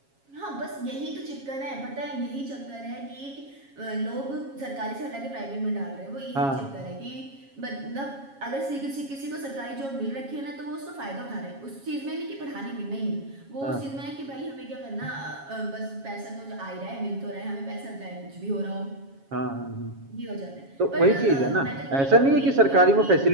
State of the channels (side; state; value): left; late; 7.3 ms